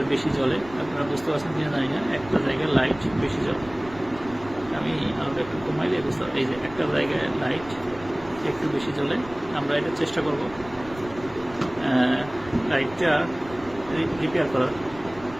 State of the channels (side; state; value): right; noise; rumble, 18 dB below the sound